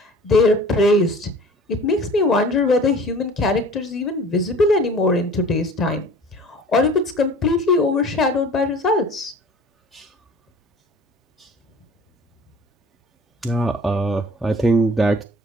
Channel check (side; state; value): both; normal; correlation 0.45